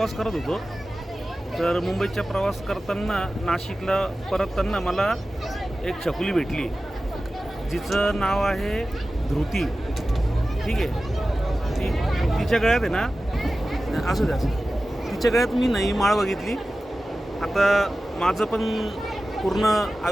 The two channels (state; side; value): normal; both; correlation 0.95